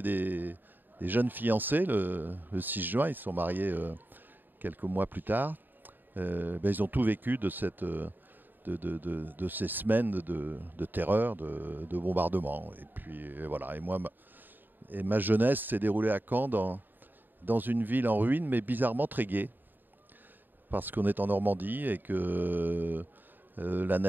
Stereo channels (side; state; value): left; late; 0.091 ms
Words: des jeunes fiancés le 6 juin, ils se sont mariés quelques mois plus tard. Ils ont tout vécu de ces semaines de terreur, de bombardement. Et puis voilà. Et moi, ma jeunesse s'est déroulée à Caen dans une ville en ruine, mais bizarrement très gaie, parce qu'on est en Normandie et que la